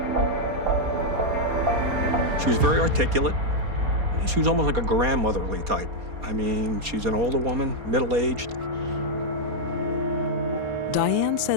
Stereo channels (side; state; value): left; late; 4.2 ms